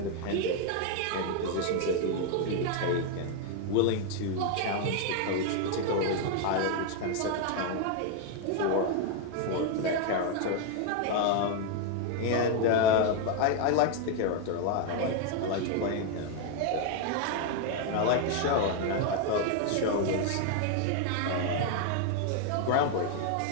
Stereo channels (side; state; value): both; different; correlation 0.01